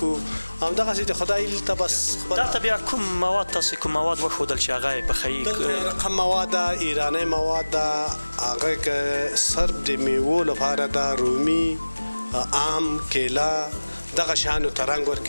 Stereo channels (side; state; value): both; inverted; correlation -1.00